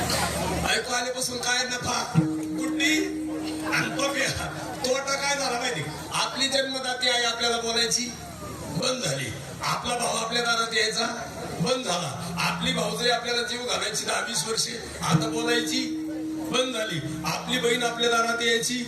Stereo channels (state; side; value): identical; both; correlation 1.00